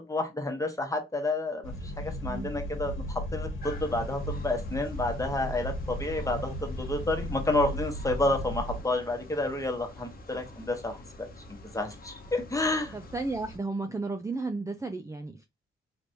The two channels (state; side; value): normal; both; correlation 0.61